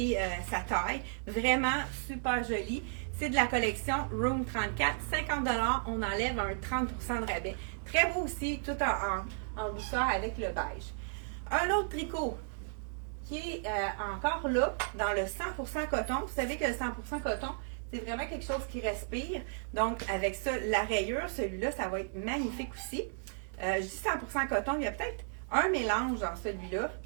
avait sa taille, vraiment super joli. C'est de la collection Room 34, 50 $, on enlève un 30 % de rabais. Très beau aussi, tout en douceur avec le beige. Un autre tricot qui est encore là, dans le 100% coton. Vous savez que le 100% coton, c'est vraiment quelque chose qui respire. Donc, avec ça, la rayure, celui-là, ça va être magnifique aussi. Je dis 100% coton, il y a peut-être un mélange dans celui-là,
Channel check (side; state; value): left; silent; digital silence